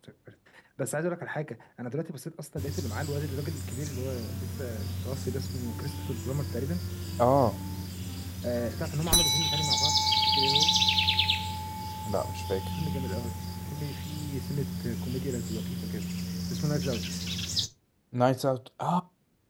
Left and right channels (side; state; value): both; identical; correlation 1.00